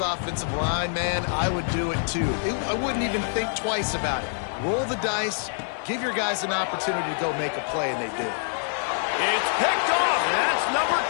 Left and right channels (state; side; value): silent; right; digital silence